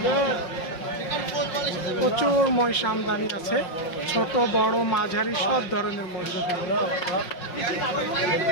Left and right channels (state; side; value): late; right; 5.5 ms